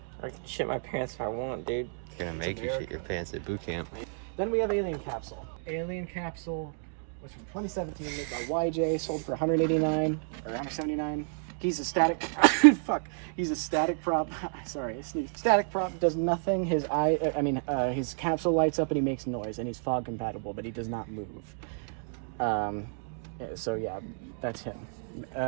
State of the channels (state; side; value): silent; left; 57 dB below the other